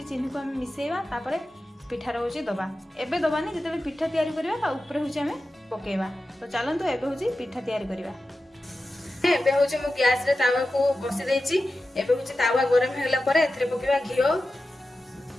को आम मिसेवा तापरे पिठार हूँ दबा एबे दबानी जिते पिठा तैयारी करवा ऊपर हूँ आम पकेवा। तो चलतु एबे हूँ पिठा तैयारी करवा। एबे हूँ मु गैस रे तावा को बसी देछि एबे हूँ तावा गरम हेला परे एथरे पकेवा घिओ।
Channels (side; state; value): both; normal; correlation 0.93